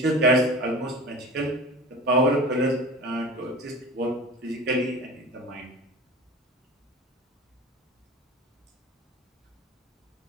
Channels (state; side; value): normal; both; correlation 0.35